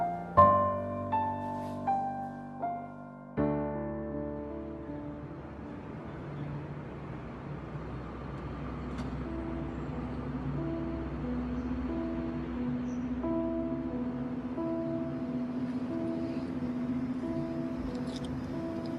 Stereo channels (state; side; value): identical; both; correlation 1.00